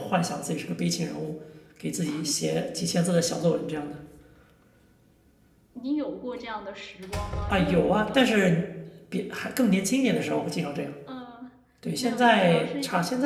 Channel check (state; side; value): identical; both; correlation 1.00